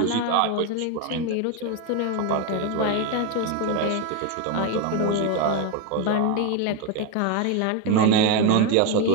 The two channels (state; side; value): different; both; correlation 0.02